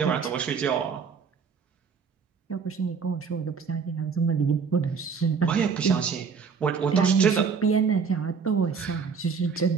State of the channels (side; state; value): left; quieter; 5.8 dB